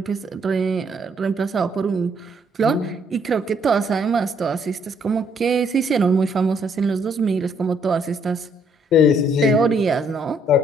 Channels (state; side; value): normal; both; correlation 0.68